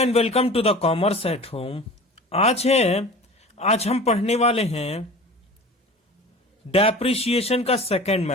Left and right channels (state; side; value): normal; both; correlation 0.39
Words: welcome to the commerce at home. आज हम पढ़ने वाले हैं डेप्रिसिएशन का सेकंड